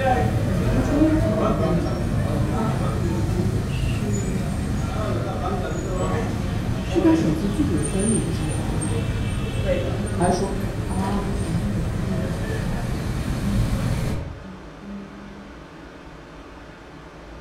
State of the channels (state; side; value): identical; both; correlation 1.00